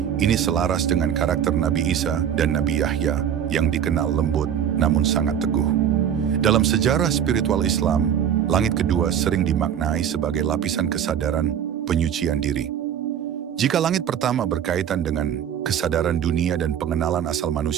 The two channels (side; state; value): left; quieter; 9.1 dB